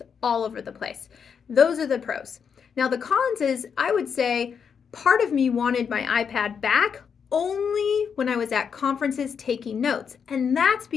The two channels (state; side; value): quieter; right; 6.8 dB